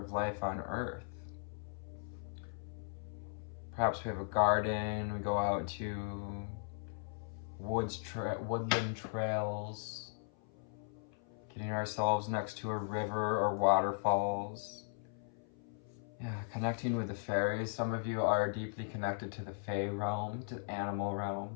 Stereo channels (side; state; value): right; silent; 53 dB below the other